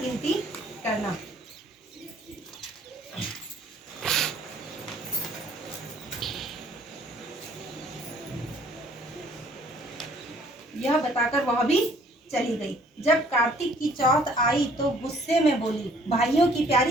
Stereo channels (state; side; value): normal; both; correlation 0.59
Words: करना। यह बताकर वह भी चली गई। जब कार्तिक की चौथ आई तो गुस्से में बोली, भाइयों की